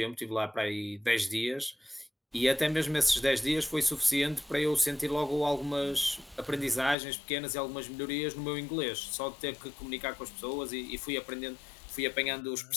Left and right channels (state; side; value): drops out; right; at 7.0 s